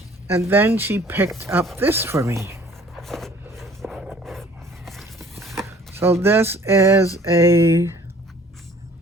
And then she picked up this for me. So this is a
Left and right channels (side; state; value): both; normal; correlation 0.53